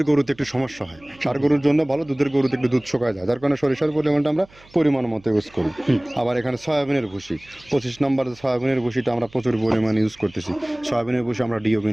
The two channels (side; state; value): right; noise; hum, 26 dB below the sound